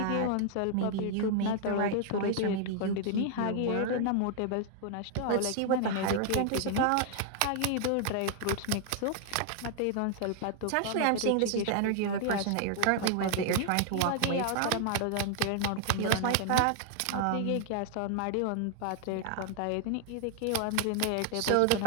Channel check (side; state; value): both; different; correlation 0.00